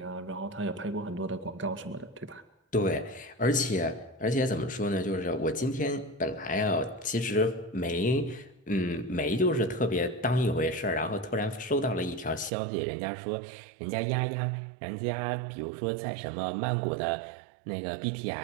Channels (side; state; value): left; drops out; at 12.5 s